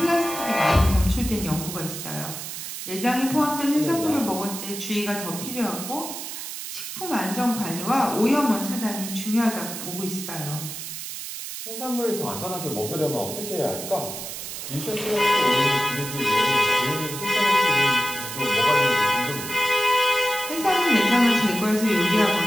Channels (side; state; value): right; noise; hiss, 8 dB below the sound